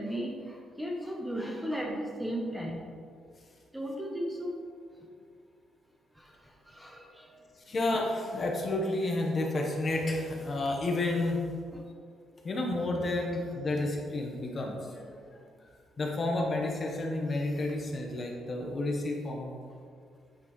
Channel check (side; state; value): both; normal; correlation 0.80